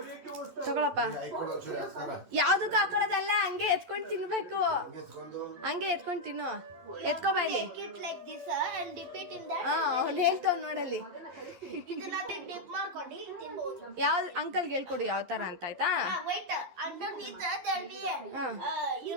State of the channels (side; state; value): left; late; 11 ms